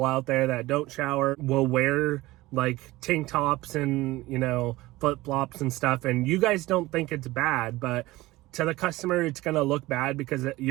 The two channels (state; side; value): quieter; left; 18.8 dB